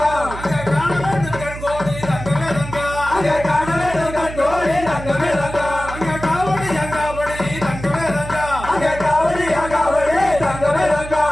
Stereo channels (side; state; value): right; noise; hum, 11 dB below the sound